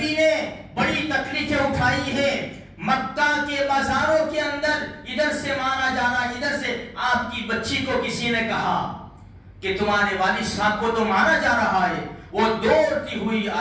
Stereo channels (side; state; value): both; identical; correlation 1.00